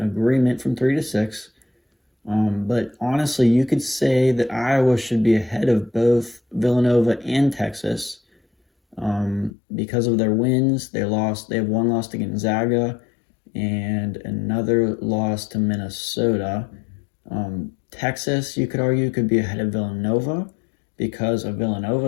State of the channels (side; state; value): right; drops out; at 9.5 s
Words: from 3 to 6. But honestly, you could say that Iowa should be ahead of both Villanova and Texas because of their wins. They have one loss to Gonzaga and another loss to Minnesota. Texas, you could argue, could be ahead of Villanova because of